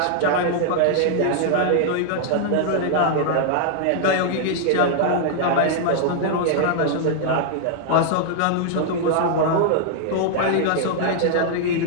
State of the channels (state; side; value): different; both; correlation -0.01